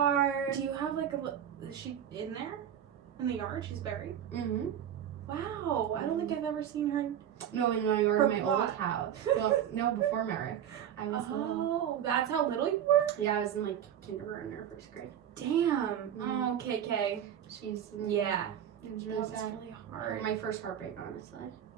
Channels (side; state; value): left; quieter; 9.8 dB